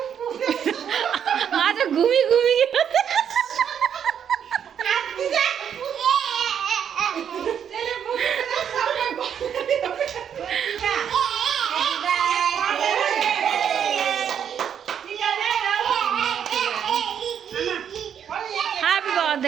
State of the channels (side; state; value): left; quieter; 8.5 dB